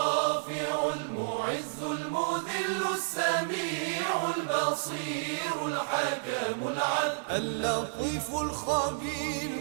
المعز المذل السميع البصير الحكم العدل اللطيف الخبير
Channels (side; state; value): left; silent; digital silence